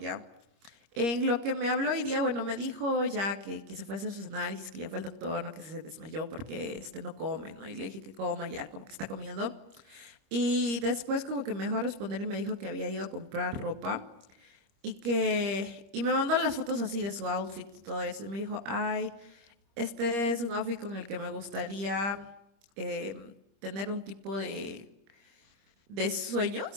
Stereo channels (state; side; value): late; left; 26 ms